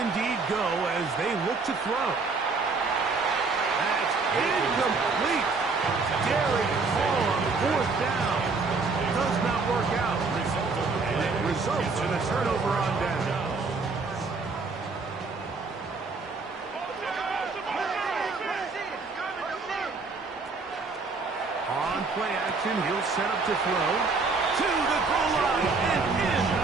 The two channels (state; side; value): quieter; left; 4.2 dB